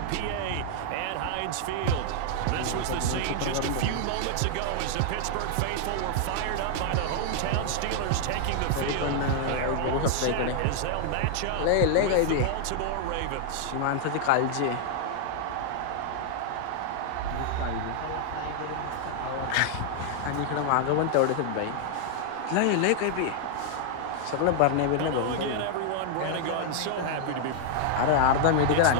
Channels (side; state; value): both; different; correlation 0.00